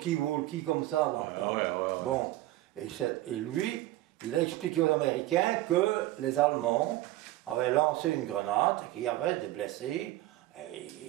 comme ça dans le temps. Ouais. Bon, et lui, il a expliqué aux Américains que les Allemands avaient lancé une grenade et qu'il y avait des blessés.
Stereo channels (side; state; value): left; quieter; 16.4 dB